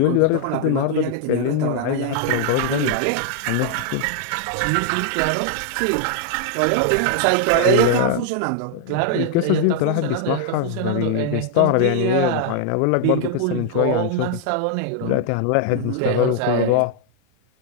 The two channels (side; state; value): both; different; correlation 0.00